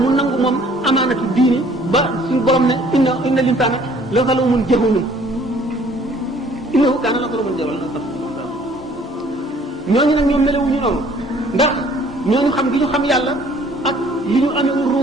nangu moom amaanatu diini ba suñu borom ne inna linsaana la zaluumun jahuulun innahu kaana zaluuman jahuulan ñooñu nag ñoom melewuñu noonu ndax ñooñu xam gi ñu xam yàlla ak li ñu amee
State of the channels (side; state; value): both; normal; correlation 0.57